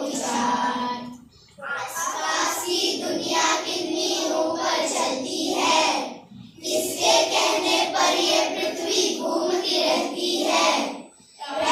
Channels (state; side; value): identical; both; correlation 1.00